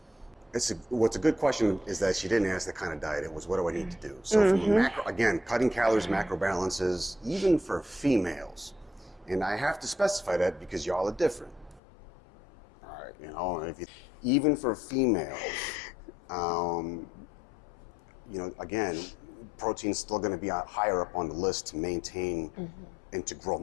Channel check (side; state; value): right; drops out; at 11.8 s